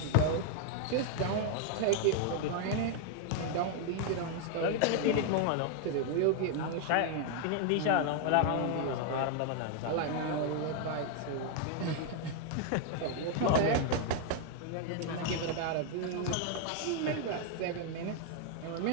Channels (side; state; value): both; different; correlation 0.00